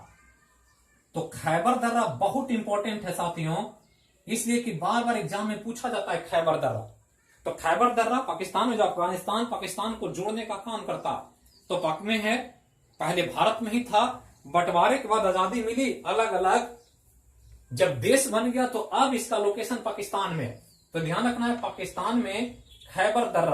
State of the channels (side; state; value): both; identical; correlation 1.00